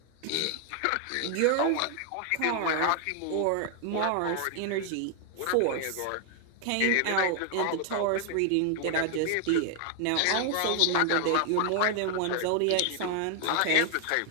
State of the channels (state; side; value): different; both; correlation 0.00